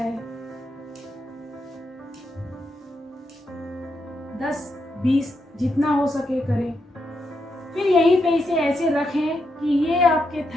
10-20 जितना हो सके करें। फिर यहीं पे इसे ऐसे रखें कि ये आपके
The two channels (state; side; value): normal; both; correlation 0.82